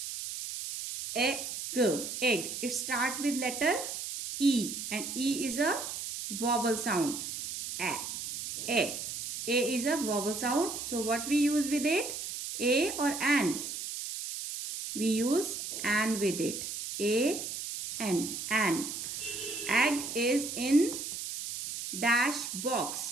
egg, it start with letter E, and E is a vowel sound. A is a vowel sound. So what we use with it? A or an? We use an with it. A, an. Egg is in dash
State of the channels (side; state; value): right; noise; hiss, 6 dB below the sound